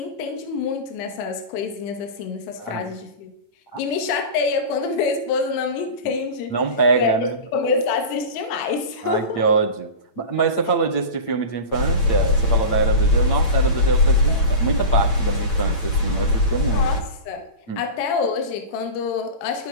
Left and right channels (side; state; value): right; late; 8.8 ms